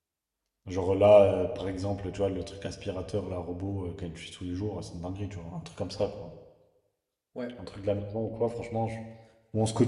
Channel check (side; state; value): both; identical; correlation 1.00